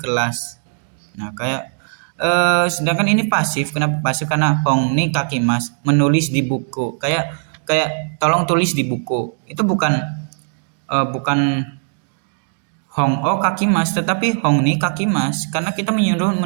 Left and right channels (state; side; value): silent; left; digital silence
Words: Nah kayak sedangkan ini pasif. Kenapa pasif? Karena hongni kakimas, menulis di buku, kayak tolong tulis di buku. Itu bukan hong o kakimas, tetapi hongni kakimas, karena kita menyuruh